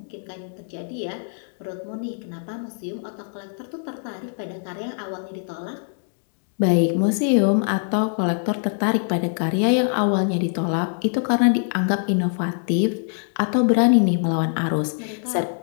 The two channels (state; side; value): silent; right; digital silence